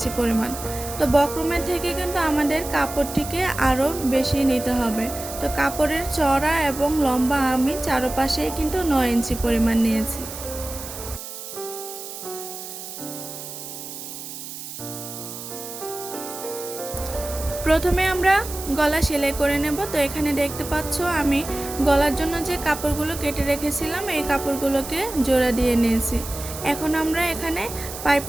পরিমাণ। তো বক্রমের থেকে কিন্তু আমাদের কাপড়টিকে আরও বেশি নিতে হবে। তো কাপড়ের চওড়া এবং লম্বা আমি চারপাশেই কিন্তু 9 ইঞ্চি পরিমাণ নিয়েছি। প্রথমে আমরা গলা সেলাই করে নেব। তো এখানে দেখতে পাচ্ছ আমি গলার জন্য যে কাপড়গুলো কেটে রেখেছিলাম এই কাপড়গুলোকে জোড়া দিয়ে নিয়েছি। এখন আমরা এখানে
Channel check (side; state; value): right; noise; hiss, 10 dB below the sound